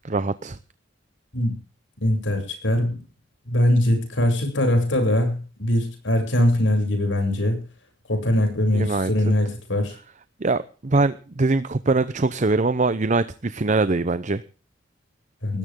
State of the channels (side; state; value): both; normal; correlation 0.62